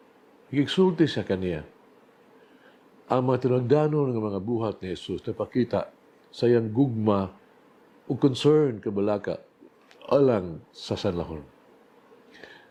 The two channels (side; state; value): both; identical; correlation 1.00